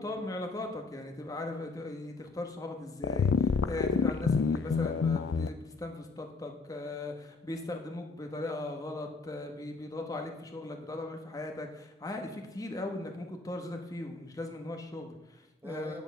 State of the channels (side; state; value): right; quieter; 3.9 dB